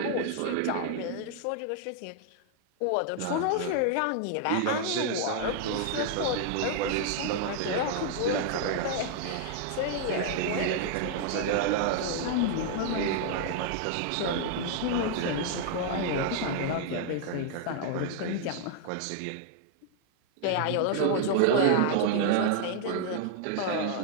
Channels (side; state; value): both; different; correlation 0.00